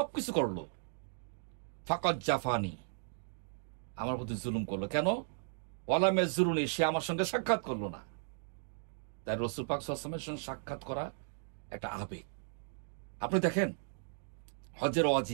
করলো, ফাকাদ জাফানি, আমার প্রতি জুলুম করলো। কেন? ওয়ালা মেজুরুনি, সে আমার সঙ্গে সাক্ষাৎ করলো না। তাই রাসূল পাক সাল্লাল্লাহু আলাইহি ওয়াসাল্লামের সঙ্গে সাক্ষাৎ করা একটা আবেগ, আপনি দেখেন, হজের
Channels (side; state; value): left; silent; digital silence